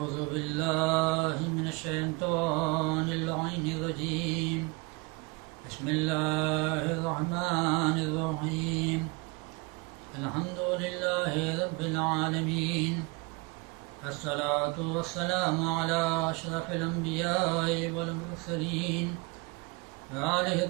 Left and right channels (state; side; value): quieter; left; 27.3 dB